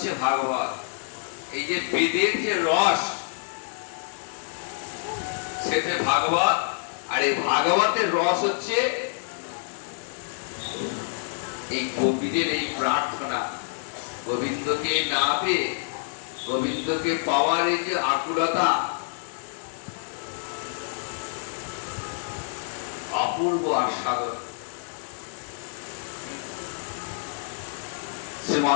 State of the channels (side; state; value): right; silent; digital silence